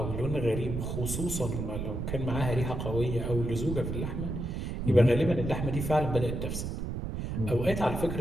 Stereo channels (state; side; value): noise; right; rumble, 4 dB below the sound